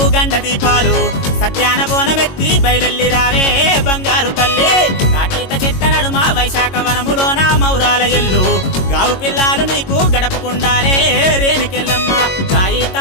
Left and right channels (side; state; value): right; late; 22 ms